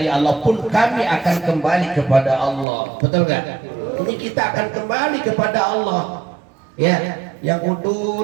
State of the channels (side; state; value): left; drops out; at 2.7 s